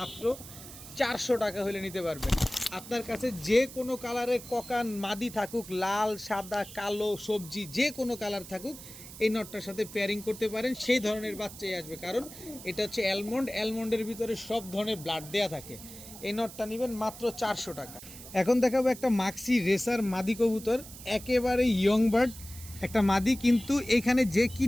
400 টাকা হলে নিতে পারবেন। আপনার কাছে যে কোনো কালারের ককান মাদি থাকুক, লাল, সাদা, কালো, সবজি, যে কোনো কালার থাকুক, এই নটটার সাথে পেয়ারিং করতে পারেন। সেই ধরনের বাচ্চাই আসবে, কারণ এটা হচ্ছে অ্যালমন্ডের ভিতরে সব ধরনের ব্লাড দেয়া থাকে। এই নটটা নেবেন মাত্র 400 টাকা। এখন দেখাবো একটা মাক্সি রেসার মাদি কবুতর, একেবারে ইয়ং বার্ড একটা মাদি। কিন্তু এখানে যে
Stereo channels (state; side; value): noise; right; hiss, 15 dB below the sound